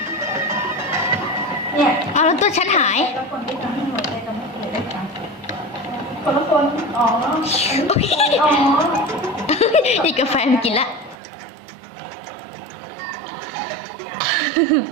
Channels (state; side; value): drops out; left; at 11.2 s